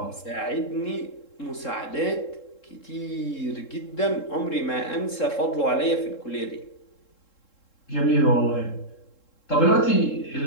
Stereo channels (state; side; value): late; right; 3.7 ms